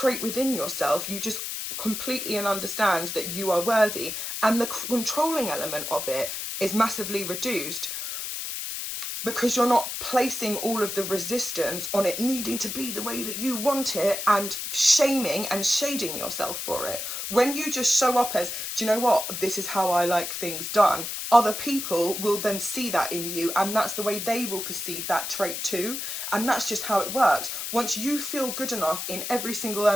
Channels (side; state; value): left; noise; hiss, 5 dB below the sound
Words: within yourself, you just completely understand that you are worthy. And the controlling element of it is massively reduced, because you're not placing all of the resistance on it needing to be the way that you want it and shaming and shading yourself for it. When you just show up as, do you know what, this is how I like things done, other people will then see that in you, and that's the way they will perceive that trait too. And that's just how it works. Once you feel good enough in every single